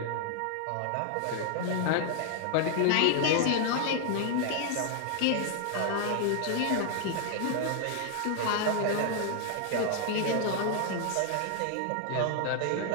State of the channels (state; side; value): different; both; correlation 0.00